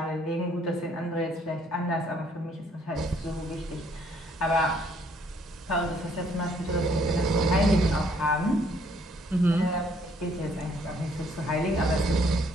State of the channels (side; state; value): both; normal; correlation 0.65